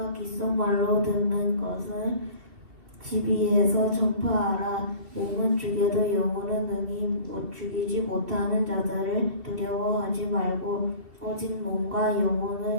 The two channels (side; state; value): left; late; 2.7 ms